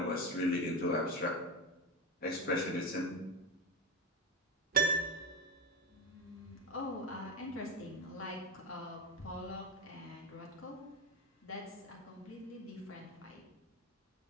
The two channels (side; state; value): both; normal; correlation 0.17